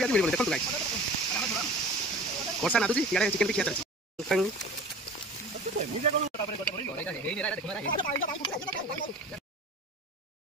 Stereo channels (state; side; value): normal; both; correlation 0.40